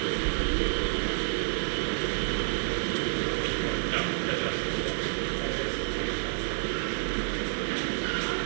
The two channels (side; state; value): left; silent; digital silence